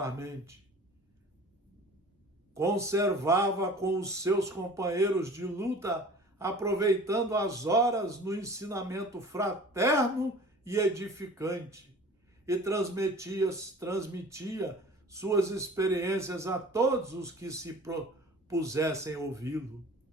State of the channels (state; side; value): normal; both; correlation 0.44